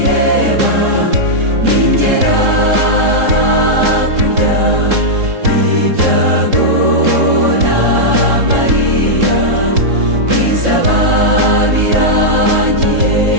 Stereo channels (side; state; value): left; late; 3.7 ms